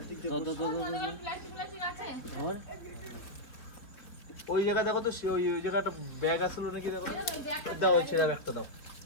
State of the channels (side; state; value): right; late; 4.3 ms